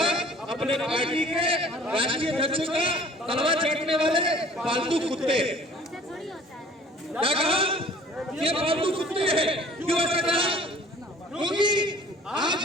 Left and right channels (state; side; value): normal; both; correlation 0.50